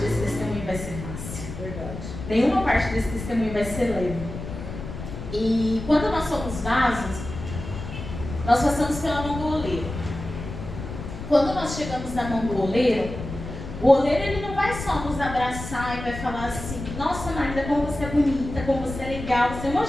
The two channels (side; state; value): left; noise; rumble, 9 dB below the sound